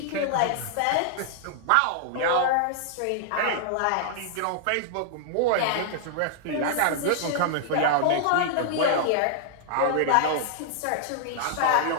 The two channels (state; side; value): different; both; correlation -0.01